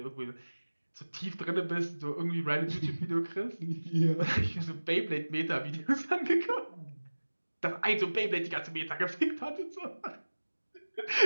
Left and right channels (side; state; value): both; inverted; correlation -1.00